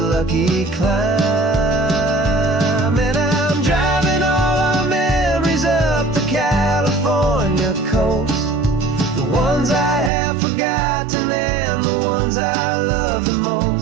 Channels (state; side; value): drops out; left; at 10.1 s